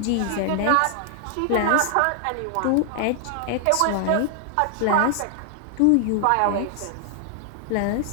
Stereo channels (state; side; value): different; both; correlation 0.00